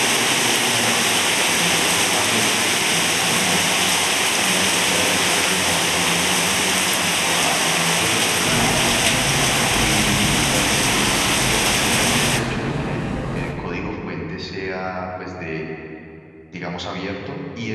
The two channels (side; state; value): both; identical; correlation 1.00